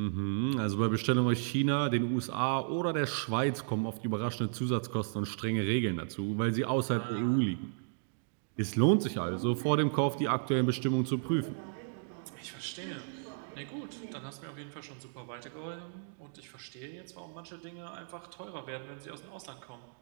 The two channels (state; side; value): silent; left; digital silence